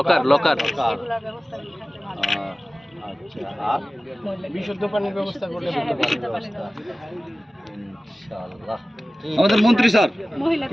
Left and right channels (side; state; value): both; normal; correlation 0.97